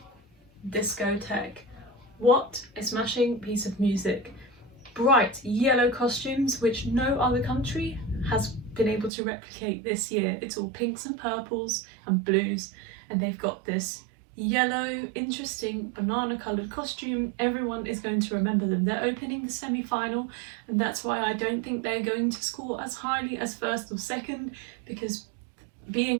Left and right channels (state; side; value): drops out; left; at 9.1 s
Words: Discotheque. What a smashing piece of music. Bright yellow costumes, which no other country has been able to replicate this year. It's all pinks and purples and blues, and they've got this yellow, interesting banana coloured costume. Everyone is going to remember them. They're opening the semi-final, and that's why I don't think they're going to score as highly as first or second, because being